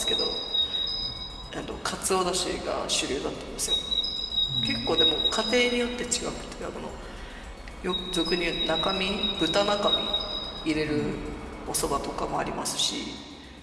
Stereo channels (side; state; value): both; identical; correlation 1.00